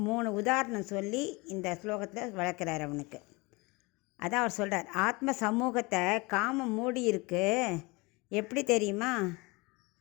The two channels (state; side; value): quieter; right; 25.6 dB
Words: 3 உதாரணம் சொல்லி இந்த ஸ்லோகத்தில் வளர்க்குறார் அவனுக்கு. அதான் அவர் சொல்கிறார், ஆத்ம சமூகத்தை காமம் மூடி இருக்கு. எப்படி தெரியுமா?